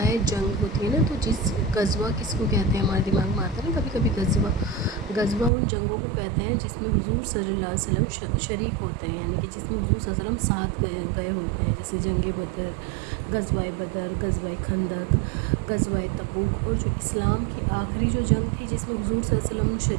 ہے، جنگ ہوتی ہے نا، تو جس غزوہ کس کو کہتے ہیں ہمارے دماغ میں آتا ہے نا کبھی کبھی غزوہ ان جنگوں کو کہتے ہیں جس میں حضور صلی اللہ علیہ وسلم شریک ہوتے ہیں، یعنی کہ جس میں حضور صلی اللہ علیہ وسلم ساتھ گئے ہوتے ہیں، جیسے جنگ بدر، غزوہ خندق، غزوہ تبوک، اور جو اسلام کی آخری جو جنگ تھی جس میں حضور صلی اللہ علیہ وسلم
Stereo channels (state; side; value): drops out; left; at 5.5 s